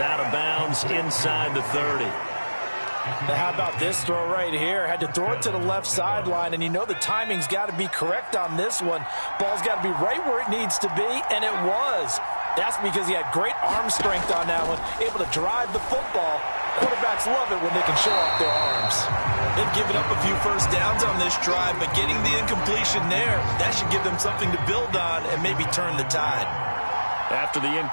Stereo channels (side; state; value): both; inverted; correlation -1.00